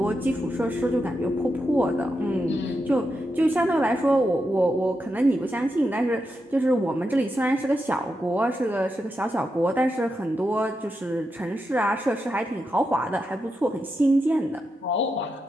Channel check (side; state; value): both; normal; correlation 0.86